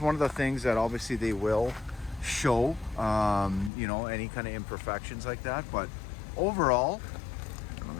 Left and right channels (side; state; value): right; drops out; at 3.7 s